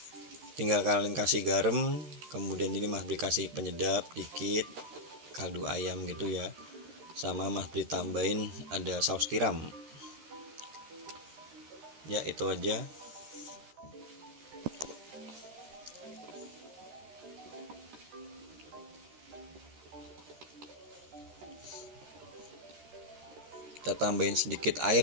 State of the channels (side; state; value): left; late; 13 ms